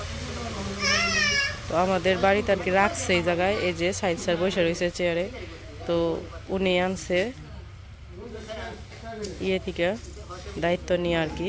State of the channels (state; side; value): identical; both; correlation 1.00